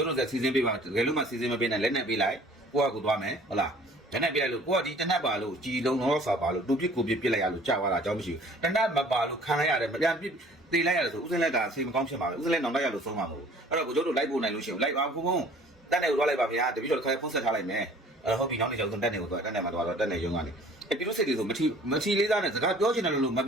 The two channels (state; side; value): normal; both; correlation 0.52